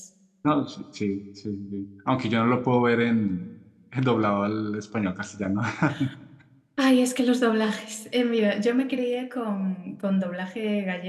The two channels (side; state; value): both; identical; correlation 1.00